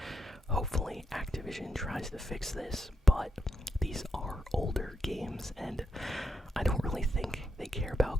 hopefully Activision tries to fix this, but these are older games and I don't really think they care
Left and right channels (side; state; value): both; normal; correlation 0.83